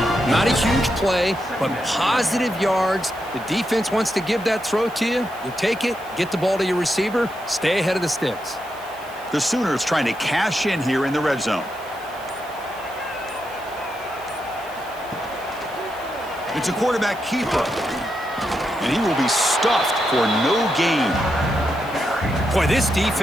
Not a huge play, but positive yards. The defense wants to give that throw to you. You take it, get the ball to your receiver, stay ahead of the sticks. The Sooners trying to cash in here in the red zone. It's a quarterback keeper. And he will be stuffed for no gain. Boy, this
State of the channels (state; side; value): noise; right; hiss, 22 dB below the sound